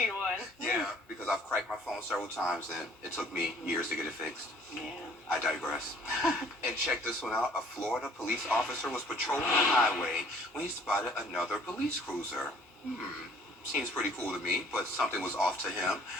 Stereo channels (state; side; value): normal; both; correlation 0.56